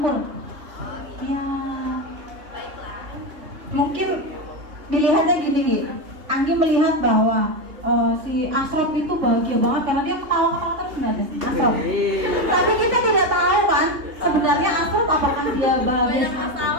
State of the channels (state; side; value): late; left; 3.2 ms